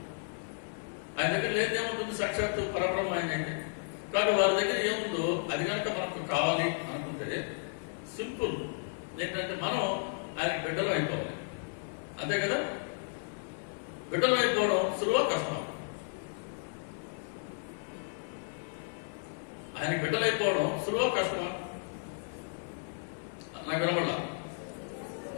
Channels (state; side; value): silent; right; digital silence